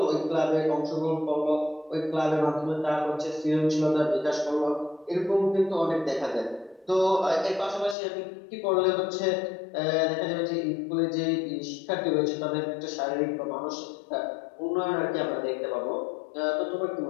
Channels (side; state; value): right; drops out; at 8.0 s